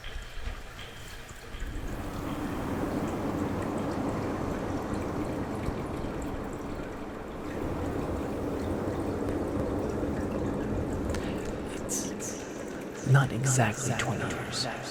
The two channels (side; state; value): both; identical; correlation 1.00